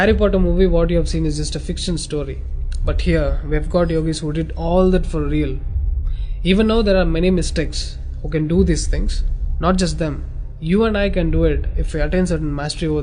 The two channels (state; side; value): identical; both; correlation 1.00